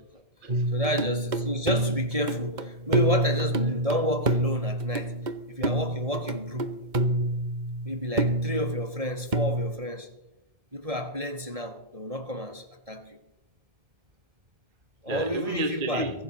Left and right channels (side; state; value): left; late; 1.7 ms